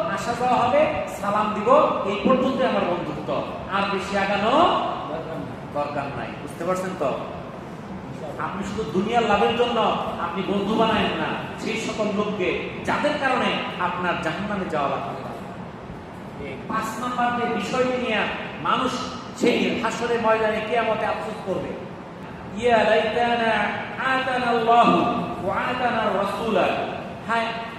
আসা যাওয়া হবে, সালাম দিব, এই পর্যন্ত আমার বন্ধুত্ব, আর বেশি আগানো দরকার নাই। বুঝতে পারছেন তো? আপনি শুধু দুনিয়ার লাভের জন্য আপনি বন্ধু বানায়েন না সেই সকল লোককে যাদের কারণে আপনার জাহান্নামে যাওয়া লাগবে। 5 নম্বর যে বিষয়টি নিয়ে মানুষ সেই হাসরের ময়দানে কিয়ামতে আফসোস করবে, ইয়া লাইতানা আতানা আল্লাহু ওয়া আতানা রাসূলা, হায়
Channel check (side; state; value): both; identical; correlation 1.00